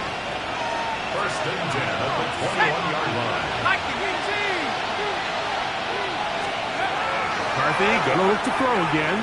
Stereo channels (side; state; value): both; identical; correlation 1.00